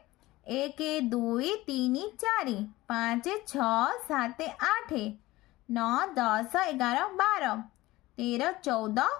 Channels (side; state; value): right; quieter; 18.4 dB